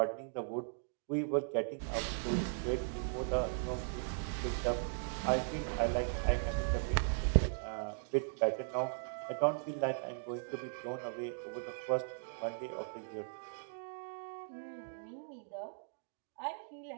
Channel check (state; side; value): silent; left; digital silence